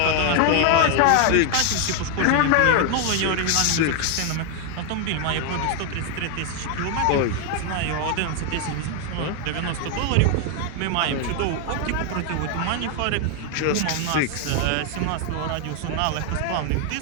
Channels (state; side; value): different; both; correlation 0.01